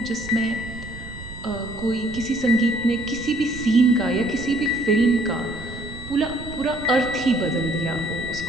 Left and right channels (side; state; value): right; noise; rumble, 14 dB below the sound